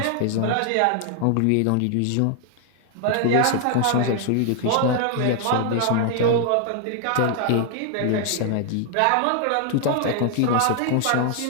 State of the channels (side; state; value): both; different; correlation 0.00